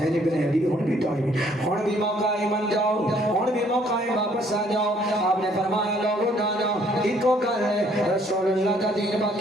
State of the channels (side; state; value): both; normal; correlation 0.63